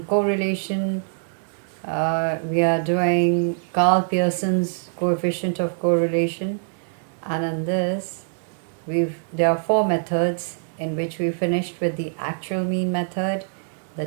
we are doing Karl Pearson's coefficient of correlation. And in this, there are 4 methods in which we finished with the actual mean method, the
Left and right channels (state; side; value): silent; left; digital silence